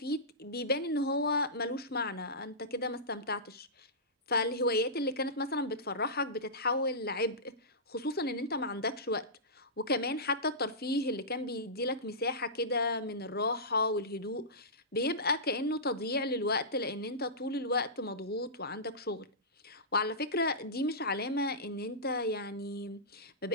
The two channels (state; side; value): normal; both; correlation -0.18